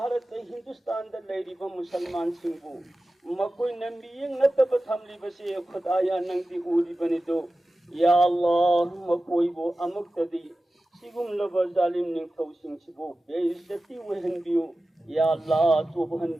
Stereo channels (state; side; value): normal; both; correlation 0.95